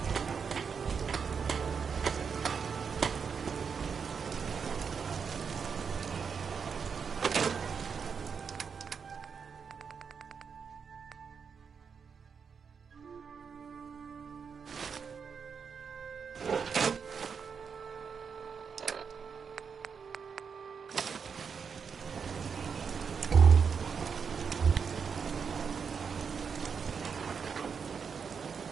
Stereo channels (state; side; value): quieter; left; 6.2 dB